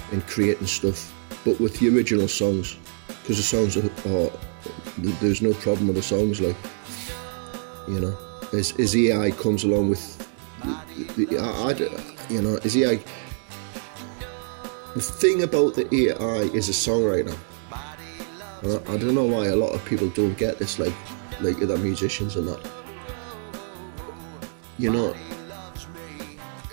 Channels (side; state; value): left; silent; digital silence